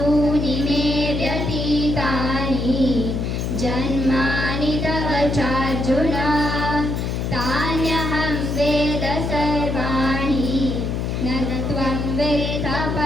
मे व्यतीतानि जन्मानि तव चार्जुन तान्यहं वेद सर्वाणि न त्वं वेद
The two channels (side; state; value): left; noise; hum, 1 dB below the sound